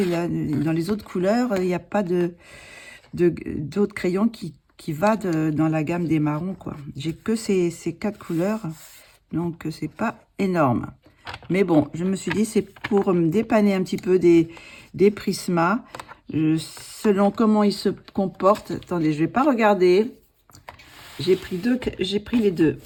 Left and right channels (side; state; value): both; identical; correlation 1.00